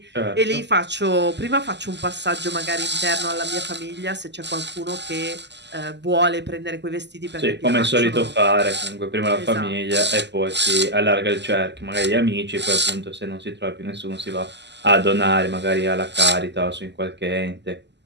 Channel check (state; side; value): late; left; 0.50 ms